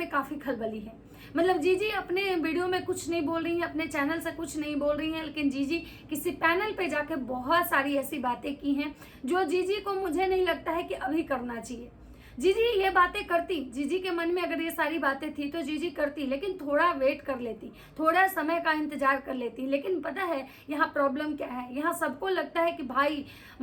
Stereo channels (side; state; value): both; identical; correlation 1.00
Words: काफी खलबली है। मतलब जीजी अपने वीडियो में कुछ नहीं बोल रही है, अपने चैनल से कुछ नहीं बोल रही है, लेकिन जीजी किसी पैनल पे जाके बहुत सारी ऐसी बातें की हैं जो जीजी को मुझे नहीं लगता है कि अभी करना चाहिए। जीजी ये बातें करती, जीजी के मन में अगर ये सारी बातें थी तो जीजी करती, लेकिन थोड़ा वेट कर लेती, थोड़ा समय का इंतजार कर लेती। लेकिन पता है यहाँ प्रॉब्लम क्या है, यहाँ सबको लगता है कि भाई